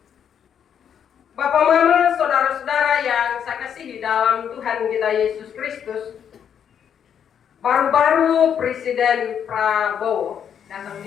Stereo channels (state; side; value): quieter; right; 8.4 dB